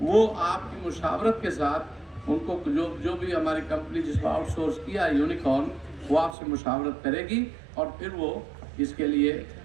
وہ آپ کی مشاورت کے ساتھ ان کو جو بھی ہماری کمپنی جس کو آؤٹ سورس کیا ہے یونیکارن، وہ آپ سے مشاورت کرے گی اور پھر وہ اس کے لیے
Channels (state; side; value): drops out; left; at 6.4 s